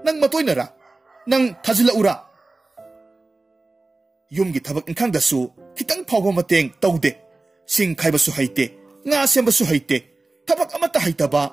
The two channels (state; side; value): quieter; left; 3.2 dB